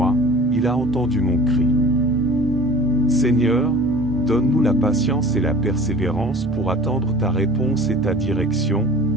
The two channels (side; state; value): both; normal; correlation 0.43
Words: il a entendu mon cri. Seigneur, donne-nous la patience et la persévérance pour attendre ta réponse et ta direction,